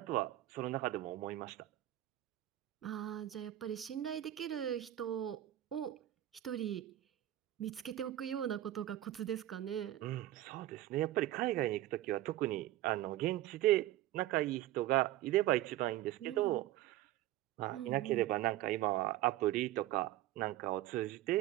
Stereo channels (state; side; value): quieter; left; 14.4 dB